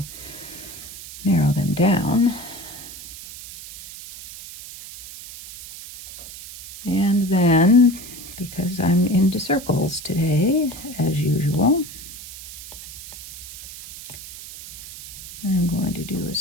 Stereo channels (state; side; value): noise; right; hiss, 14 dB below the sound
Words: Narrow them down. And then because I'm into circles today, as usual. I'm going to do a